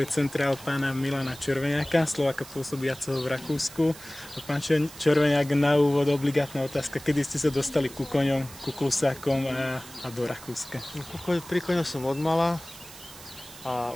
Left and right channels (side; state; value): right; noise; hiss, 17 dB below the sound